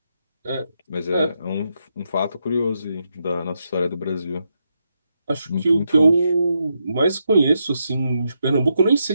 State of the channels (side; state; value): both; inverted; correlation -0.82